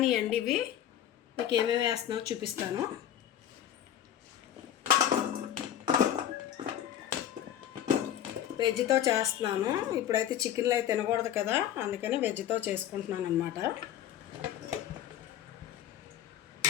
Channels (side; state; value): right; quieter; 10.9 dB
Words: అండి. ఇవి మీకు ఏమేమి వేస్తున్నానో చూపిస్తాను. వెజ్తో చేస్తున్నాను. ఇప్పుడైతే చికెన్లు అయితే తినకూడదు కదా, అందుకని వెజ్తో చేసుకుంటున్నాను అన్నమాట.